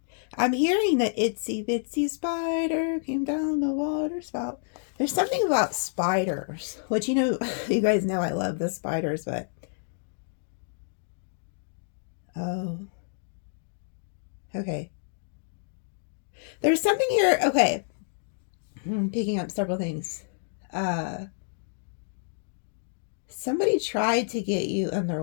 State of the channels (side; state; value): right; silent; digital silence